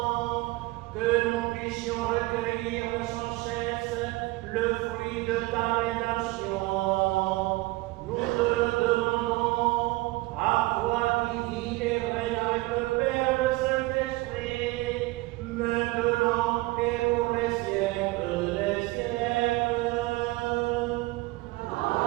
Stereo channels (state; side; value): quieter; left; 20.9 dB